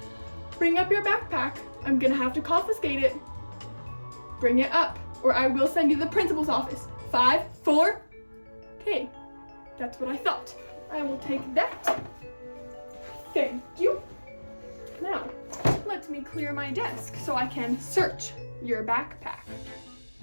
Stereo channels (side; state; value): both; inverted; correlation -1.00